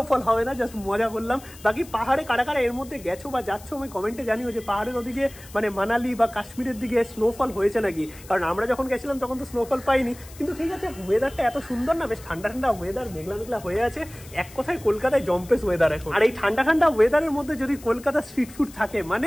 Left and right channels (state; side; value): noise; left; hiss, 20 dB below the sound